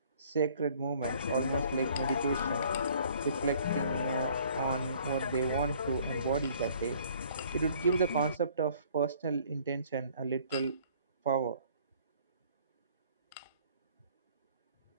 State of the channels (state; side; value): inverted; both; correlation -0.57